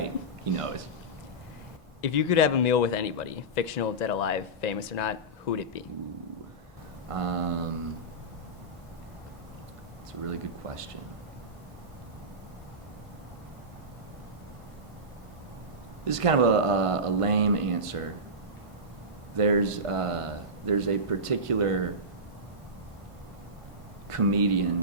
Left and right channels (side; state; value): both; normal; correlation -0.17